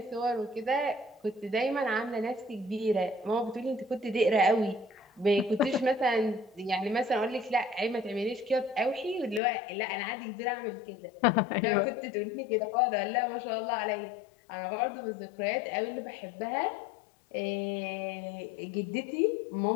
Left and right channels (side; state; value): right; drops out; at 9.4 s